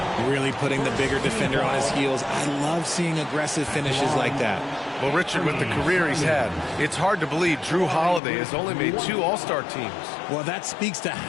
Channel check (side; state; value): right; drops out; at 8.2 s